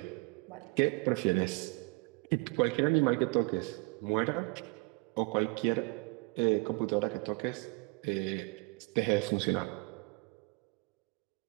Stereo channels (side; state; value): left; quieter; 29.0 dB